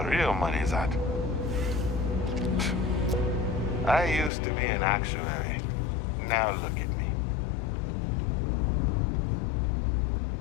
real money's at. I used to be an actuary. Now look at me.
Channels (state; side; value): drops out; right; at 4.3 s